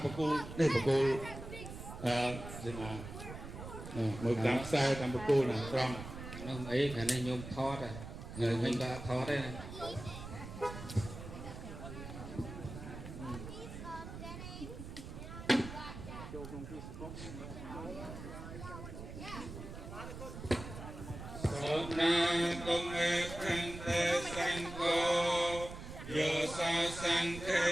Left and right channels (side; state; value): right; noise; rumble, 10 dB below the sound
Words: បកគោនេះបកគោស្មាមើលតាមខ្សែតាមបកគោណាត្រង់នោះអីខាងនេះញោមថតហើយញោមដាក់ថតទេណាសូមណាកុំឯខាងតែសង្កោយោសោសង្ឃេ